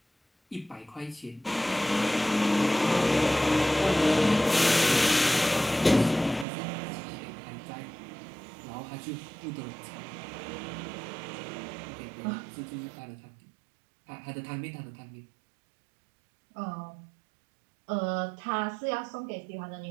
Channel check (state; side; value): drops out; left; at 6.5 s